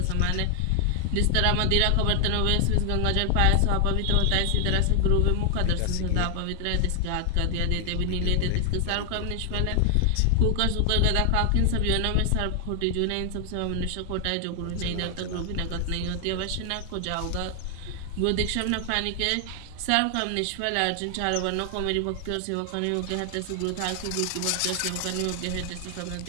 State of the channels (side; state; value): both; different; correlation 0.00